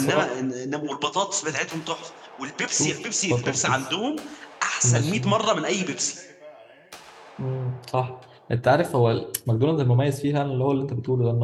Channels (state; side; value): identical; both; correlation 1.00